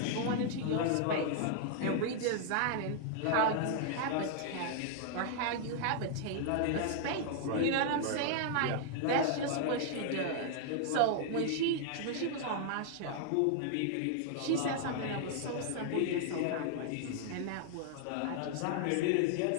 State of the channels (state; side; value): different; both; correlation -0.01